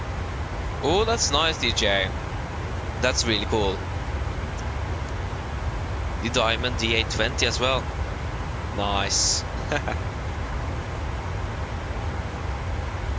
Oh, that's nice, DJ. That's really cool. The Diamond D820 as well. Nice.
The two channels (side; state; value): both; identical; correlation 1.00